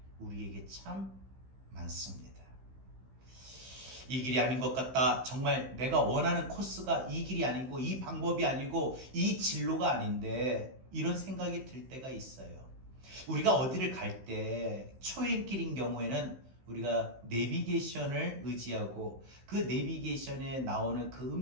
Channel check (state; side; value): late; left; 15 ms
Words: 우리에게 참 많습니다. 이 길이 아닌 것 같다. 정말 내가 원하는 코스가 이 길이 아니고 이 방법이 아니고 이 진로가 아닌데 이런 생각이 들 때가 있어요. 우리가 어디를 갈 때 초행길인 경우에는 우리가 내비게이션을 의지하고 그 내비게이션에 나오는 그